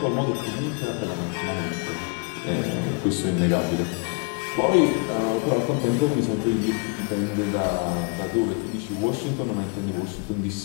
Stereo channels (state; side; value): quieter; right; 34.5 dB